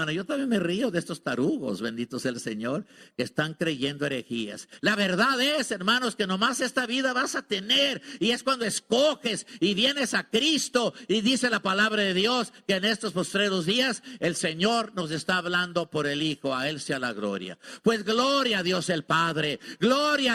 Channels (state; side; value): identical; both; correlation 1.00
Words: Yo también me río de estos tarugos, bendito sea el Señor, que están creyendo herejías. La verdad es, hermanos, que nomás esta vida vas a tener, y es cuando escoges y vienes a Cristo, y dice la palabra de Dios que en estos postreros días el Señor nos está hablando por el Hijo. A Él sea la gloria. Pues gloria a Dios el Padre, gloria